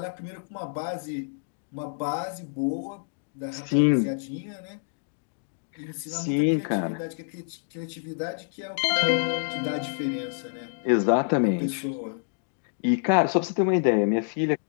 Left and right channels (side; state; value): right; silent; digital silence